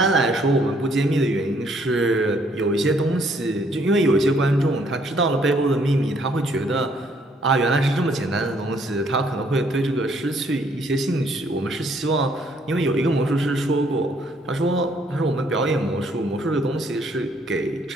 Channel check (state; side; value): normal; both; correlation 0.66